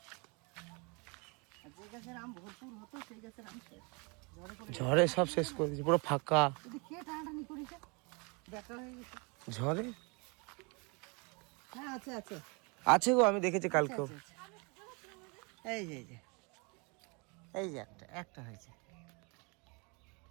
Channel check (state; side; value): quieter; left; 31.1 dB